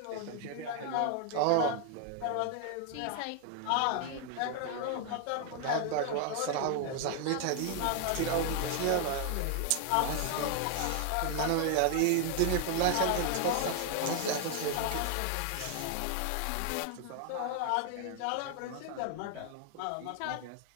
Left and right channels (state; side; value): different; both; correlation 0.00